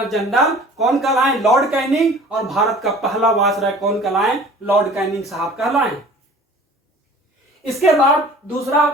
जनरल कौन कहलाए? Lord Canning. और भारत का पहला वायसराय कौन कहलाए? लॉर्ड कैनिंग साहब कहलाए। इसके बाद दूसरा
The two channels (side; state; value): both; normal; correlation 0.47